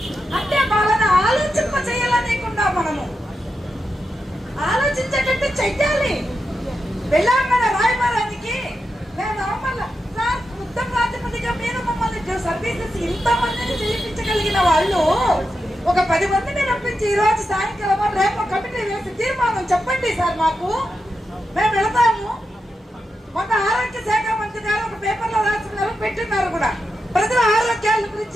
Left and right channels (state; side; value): normal; both; correlation 0.88